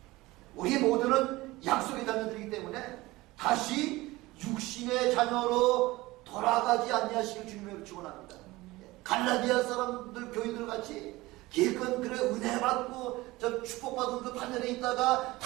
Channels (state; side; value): quieter; left; 19.9 dB